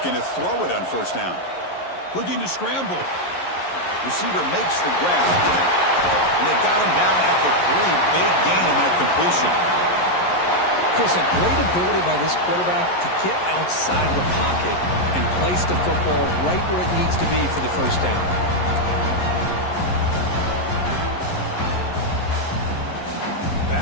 to throw it on first down. Looking to scramble. Receiver makes the grab. And they got him down at the 3. Big gain on that completion. Chris, a great ability by this quarterback to get outside of the pocket and place the football right where it needs to be for the first down.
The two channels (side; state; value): right; late; 11 ms